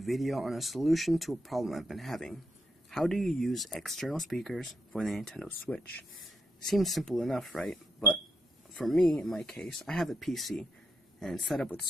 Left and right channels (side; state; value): both; normal; correlation 0.81